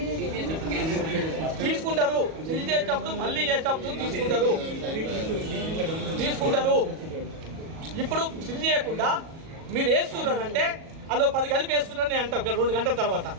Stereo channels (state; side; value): late; left; 37 ms